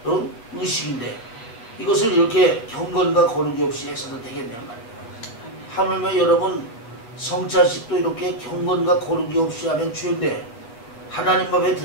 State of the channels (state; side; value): late; right; 8.5 ms